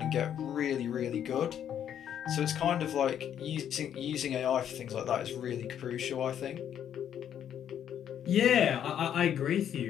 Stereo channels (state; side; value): quieter; right; 9.6 dB